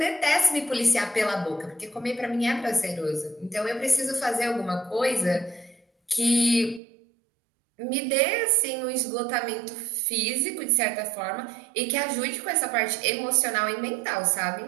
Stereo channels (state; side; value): drops out; left; at 6.8 s